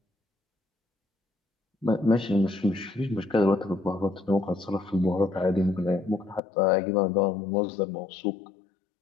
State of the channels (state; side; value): drops out; right; at 6.4 s